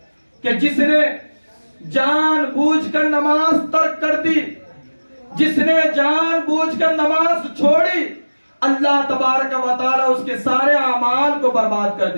کہ جس نے جان بوجھ کر نماز ترک کر دی, جس نے جان بوجھ کر نماز چھوڑی, اللہ تبارک و تعالی اس کے سارے اعمال کو برباد کر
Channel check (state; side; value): inverted; both; correlation -1.00